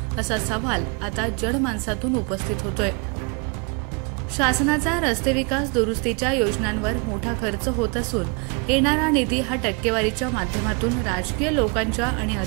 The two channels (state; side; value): quieter; left; 33.3 dB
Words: असा सवाल आता जनमानसातून उपस्थित होतोय। शासनाचा रस्ते विकास दुरुस्तीच्या योजनांवर मोठा खर्च होत असून येणारा निधी हा टक्केवारीच्या माध्यमातून राजकीय लोकांच्या आणि